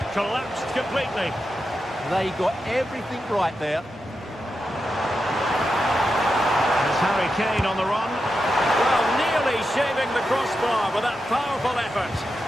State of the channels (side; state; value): both; normal; correlation 0.88